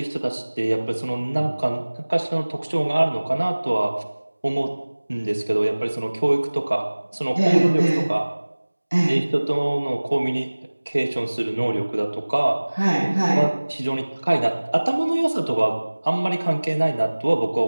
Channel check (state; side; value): inverted; both; correlation -1.00